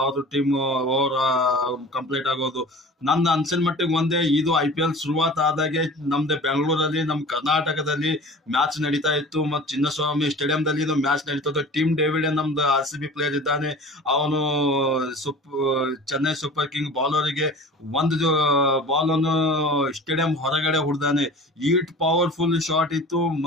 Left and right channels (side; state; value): both; normal; correlation 0.40